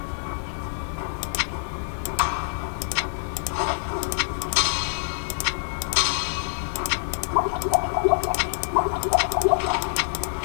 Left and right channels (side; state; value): right; silent; digital silence